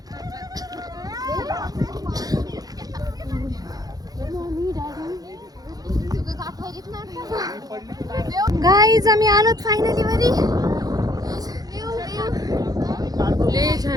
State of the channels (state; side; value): late; left; 0.18 ms